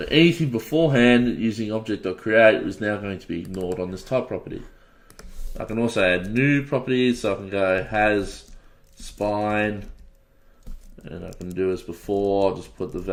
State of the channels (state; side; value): identical; both; correlation 1.00